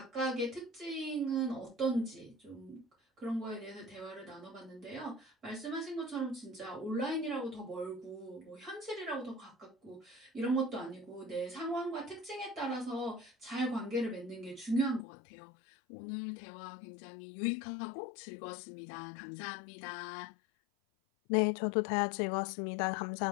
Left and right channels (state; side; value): drops out; right; at 15.1 s